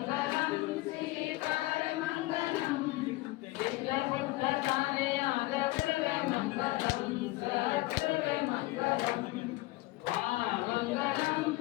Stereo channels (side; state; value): right; quieter; 20.3 dB